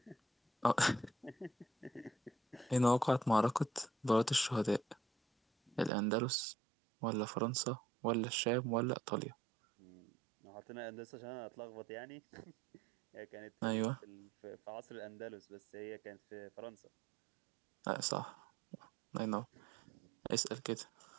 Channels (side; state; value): left; drops out; at 5.9 s